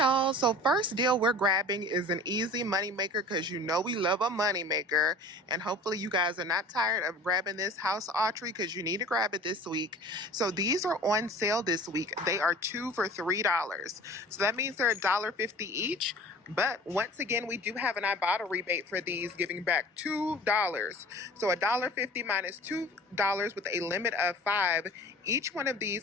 So first deal we're grabbing is an easy money maker, because you know we love a money maker, and hopefully you guys are not tired of grabbing this house archery, because you need to grab it this week. So these are on sale this week. They are 2 for $3. So that means they're $1.50 each. But once again, we do have an Ibotta rebate for these, giving back $2. So $1.50 minus $2 with a limit of 5. Each one of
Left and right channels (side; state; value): both; normal; correlation 0.43